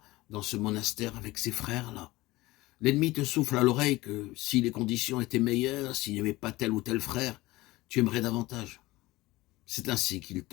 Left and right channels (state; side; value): quieter; right; 19.4 dB